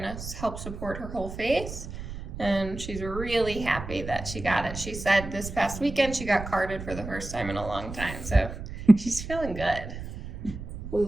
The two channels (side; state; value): right; noise; rumble, 9 dB below the sound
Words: of help support her whole face, and she's really happy that she got it. She said this past weekend she got carded for the first time in a long time, so she's feeling good. We